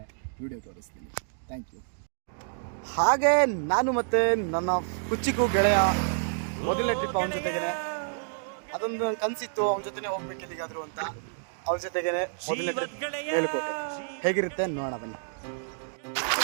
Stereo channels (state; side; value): silent; left; digital silence